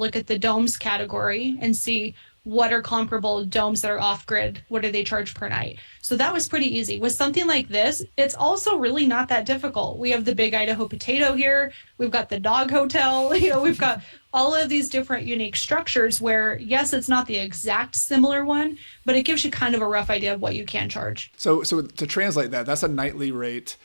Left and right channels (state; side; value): inverted; both; correlation -1.00